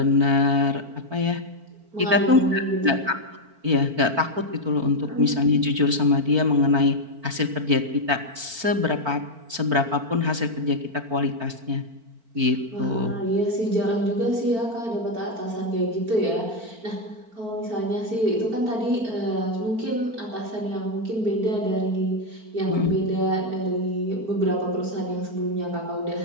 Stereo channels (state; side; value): late; left; 4.5 ms